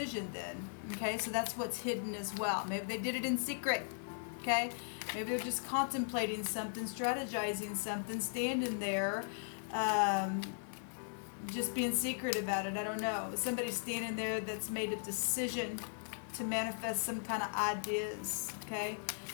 then. Okay, so that's what's hidden as well. Maybe they did it in secret. Okay, maybe they're just contemplating something, strategizing something, standing there, just being secret about it. I don't know. Somebody's standing there that's made a decision to manifest some kind of ideas, okay?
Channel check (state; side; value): silent; right; digital silence